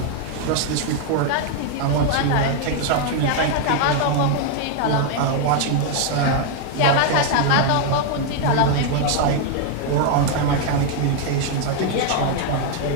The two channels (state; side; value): different; both; correlation 0.00